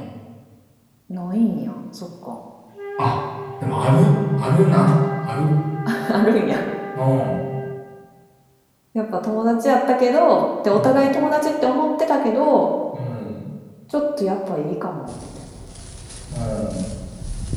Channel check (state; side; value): identical; both; correlation 1.00